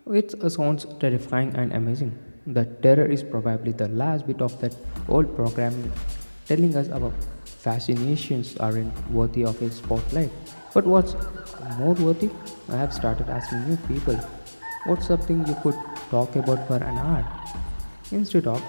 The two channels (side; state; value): both; inverted; correlation -1.00